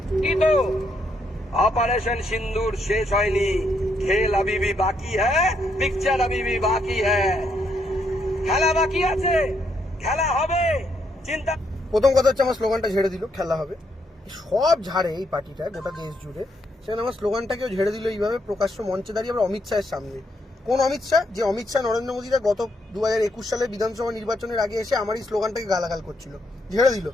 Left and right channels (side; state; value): both; normal; correlation 0.76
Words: কি তো ऑपरेशन सिंदूर शेष হয়নি, খেল अभी भी बाकी है, पिक्चर अभी भी बाकी है, খেলা বাকি আছে, খেলা হবে। চিন্তা প্রথম কথা হচ্ছে আমার স্লোগানটা ঝেড়ে দিল, খেলা হবে। সব ঝাড়ে এই পার্টিটা গোটা দেশ জুড়ে। সেখানে আমার স্লোগানটাকেও ঝেড়ে দিল এইভাবে প্রকাশ্য মঞ্চে দাঁড়িয়ে আবার অমিত শাহের সামনে। কোন অমিত শাহ? যে অমিত শাহ নরেন্দ্র মোদীরা গত 2021 সালের বিধানসভা নির্বাচনের আগে এসে আমার এই স্লোগানটাকে গালাগাল করছিল, ঝেড়ে দিল।